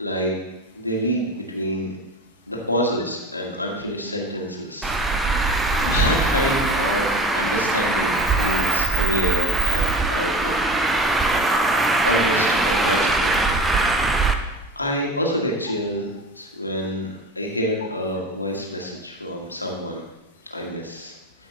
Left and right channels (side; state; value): both; normal; correlation 0.33